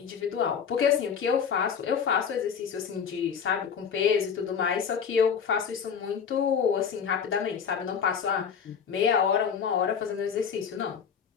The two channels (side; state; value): right; quieter; 7.0 dB